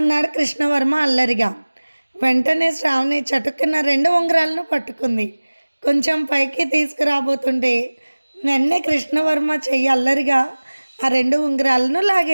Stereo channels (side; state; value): both; inverted; correlation -1.00